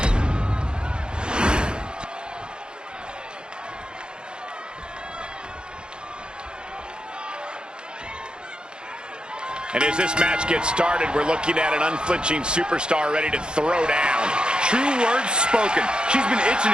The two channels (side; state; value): left; late; 0.049 ms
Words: And as this match gets started, we're looking at an unflinching superstar ready to throw down. True words spoken. She's been itching